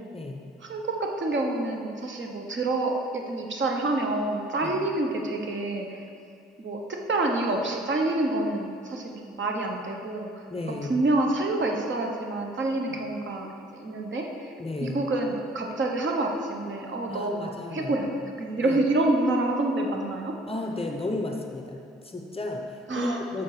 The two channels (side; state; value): both; normal; correlation 0.53